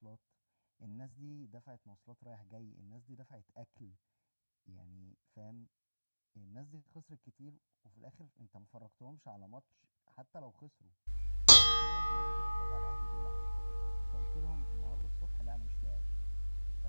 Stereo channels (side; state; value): both; inverted; correlation -1.00